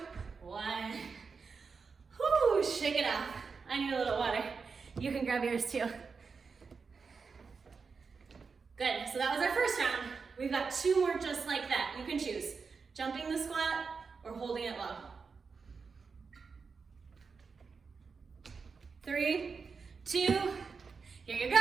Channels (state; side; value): quieter; left; 5.1 dB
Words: 1. Whoo, shake it off. I need a little water. You can grab yours too. Good, so that was our first round. We've got 2 more just like that. You can choose jumping the squat or holding it low. 3, 2, here you